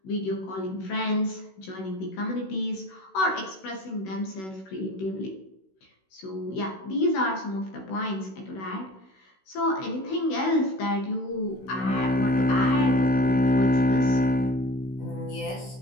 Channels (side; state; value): right; late; 16 ms